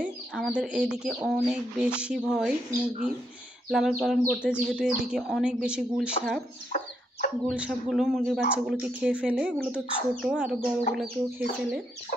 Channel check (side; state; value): both; normal; correlation 0.78